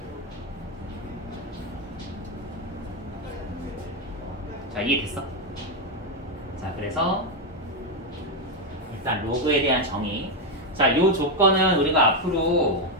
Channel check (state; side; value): normal; both; correlation 0.04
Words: 자, 이해됐어? 자, 그래서 일단 로그에 대한 정의. 자, 요 조건은 우리가 앞으로